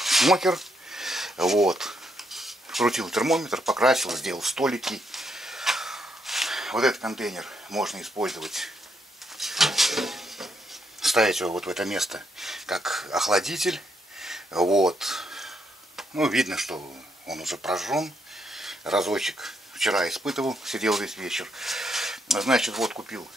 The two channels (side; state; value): both; normal; correlation 0.77